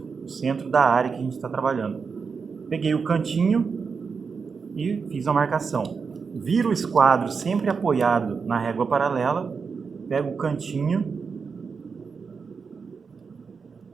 da área que a gente está trabalhando? Peguei o cantinho e fiz a marcação. Viro o esquadro sempre apoiado na régua paralela, pego o cantinho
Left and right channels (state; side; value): quieter; left; 5.4 dB